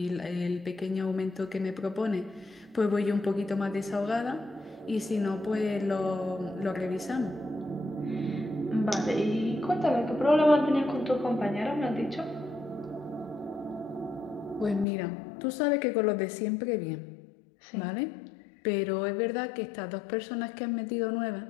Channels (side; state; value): right; drops out; at 14.9 s